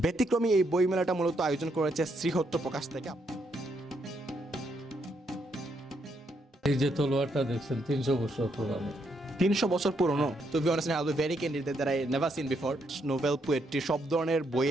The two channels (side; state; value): both; normal; correlation 0.76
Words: এই বইমেলাটা মূলত আয়োজন করেছে শ্রীহট্ট প্রকাশ থেকে। এই যে তলোয়ারটা দেখছেন 300 বছর পুরানো। 300 বছর পুরনো। To be honest I will be very candid that I never seen before. Novel, poetry সব ধরনের